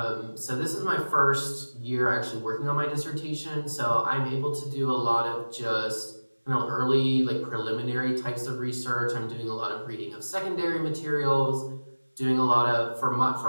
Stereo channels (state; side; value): inverted; both; correlation -1.00